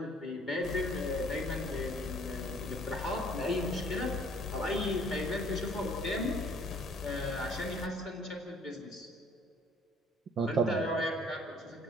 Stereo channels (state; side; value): normal; both; correlation 0.57